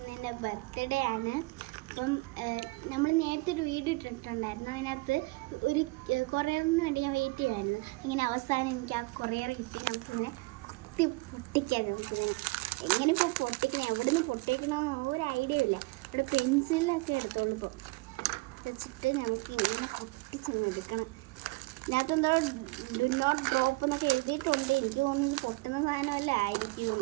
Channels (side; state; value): left; quieter; 24.4 dB